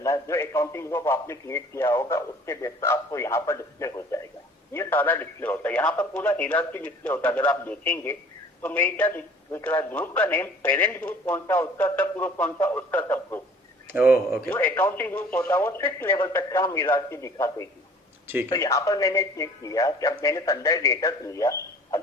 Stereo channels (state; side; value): normal; both; correlation 0.49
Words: है, जो अकाउंटिंग ग्रुप आपने क्रिएट किया होगा उसके बेस पर आपको यहाँ पर डिस्प्ले हो जाएगा। ये सारा डिस्प्ले होता है। यहाँ पर पूरा हिरार्की डिस्प्ले होता है। अगर आप देखेंगे तो मैं क्या दिख रहा है, ग्रुप का नेम, पेरेंट ग्रुप कौन सा, उसका सब ग्रुप कौन सा, उसका सब ग्रुप। ओके। जो अकाउंटिंग ग्रुप होता है वो 6 लेवल तक का हम हिरार्की दिखाते हैं। ठीक तो है। यहाँ पर मैंने चेक किया कि अब मैंने संडे डेटर्स लिया।